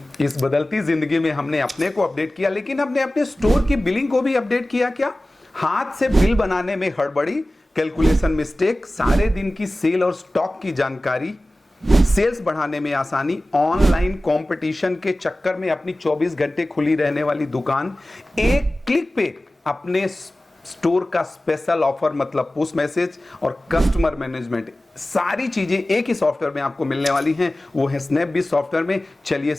बदलती जिंदगी में हमने अपने को अपडेट किया, लेकिन हमने अपने स्टोर की बिलिंग को भी अपडेट किया क्या? हाथ से बिल बनाने में हड़बड़ी, कैलकुलेशन मिस्टेक, सारे दिन की सेल और स्टॉक की जानकारी, सेल्स बढ़ाने में आसानी, ऑनलाइन कंपटीशन के चक्कर में अपनी 24 घंटे खुली रहने वाली दुकान, एक क्लिक पे अपने स्टोर का स्पेशल ऑफर मतलब पुश मैसेज और कस्टमर मैनेजमेंट, सारी चीजें एक ही सॉफ्टवेयर में आपको मिलने वाली हैं। वो है स्नैपबीज सॉफ्टवेयर में। चलिए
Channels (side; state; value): both; normal; correlation 0.97